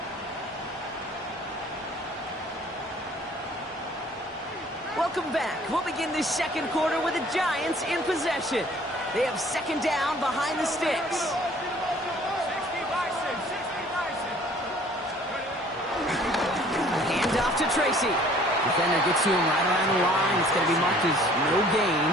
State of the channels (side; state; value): both; normal; correlation 0.54